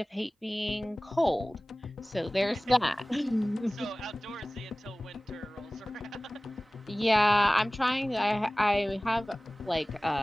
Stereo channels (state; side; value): normal; both; correlation 0.98